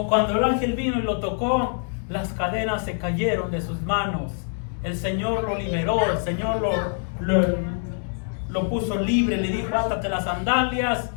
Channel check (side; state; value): right; silent; 61 dB below the other